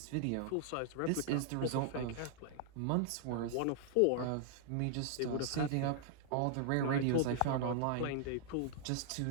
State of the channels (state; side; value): different; both; correlation -0.01